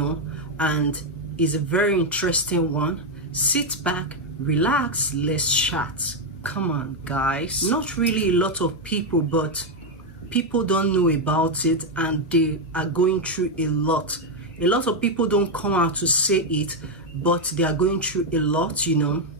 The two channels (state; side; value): normal; both; correlation 0.03